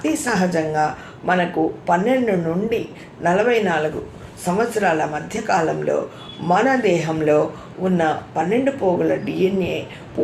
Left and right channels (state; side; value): identical; both; correlation 1.00